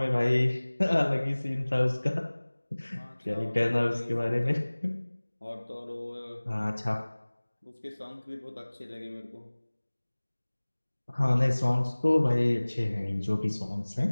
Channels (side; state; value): both; inverted; correlation -1.00